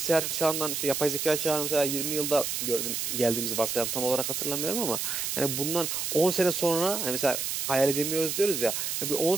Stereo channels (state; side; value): noise; right; hiss, 2 dB below the sound